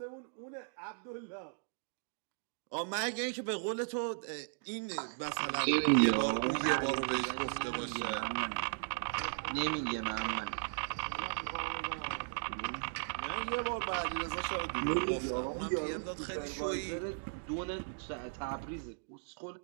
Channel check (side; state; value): left; silent; digital silence